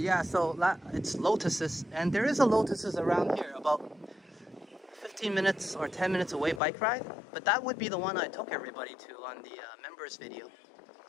yeah, so it's Lotuses, and there is a Lotuses around here, about 15 minutes or 10 minutes away bike ride. But that would be the one I took everybody to on the members video.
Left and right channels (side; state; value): right; drops out; at 6.6 s